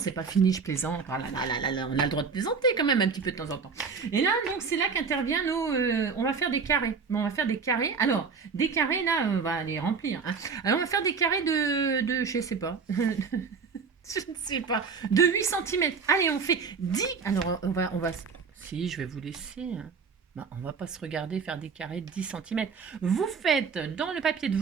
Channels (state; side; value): quieter; left; 5.5 dB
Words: pas fini, je plaisante. Ah là, là, là, là, on a le droit de plaisanter quand même un petit peu de temps en temps. Et là, donc, c'est là qu'intervient nos... on va faire des carrés. Bon, on va faire des carrés. Alors, des carrés, là, on va les remplir, hein. Alors, on va faire des carrés je sais pas. Je ne sais pas. De 8 centimètres. Allez, on fait 10. Alors, on va... Si, je vais vous laisser, hein. Bah, on va pas se regarder faire des carrés de 10 centimètres. Vous faites dans le papier de